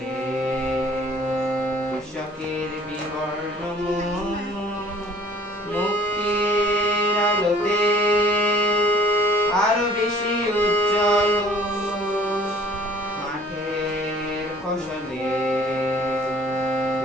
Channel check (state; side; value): normal; both; correlation 0.54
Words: কৃষকের বিবর্ণ মুখ, মুক্তির আলোতে আরো বেশি উজ্জ্বল। মাঠের ফসলে